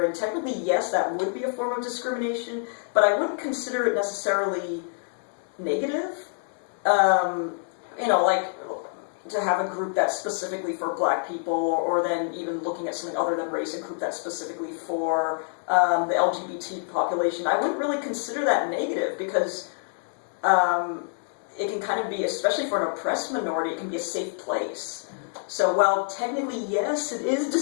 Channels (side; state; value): right; silent; 60 dB below the other